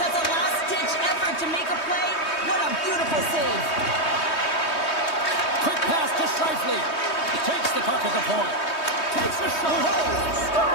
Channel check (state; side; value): late; right; 3.2 ms